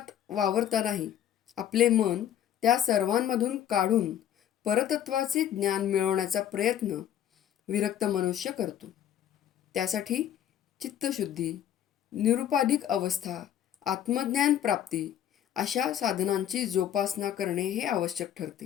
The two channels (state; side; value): quieter; right; 10.4 dB